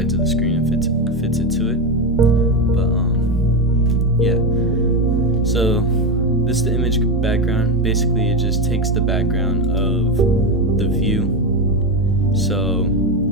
of the screen and fits it to it. But yeah. So this is the image background. Basically, it just takes the background of the view. So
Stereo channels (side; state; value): both; normal; correlation 0.13